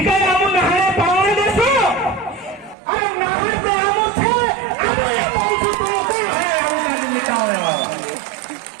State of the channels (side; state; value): left; drops out; at 2.8 s